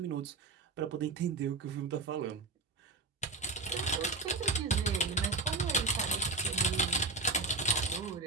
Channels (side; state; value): left; quieter; 3.5 dB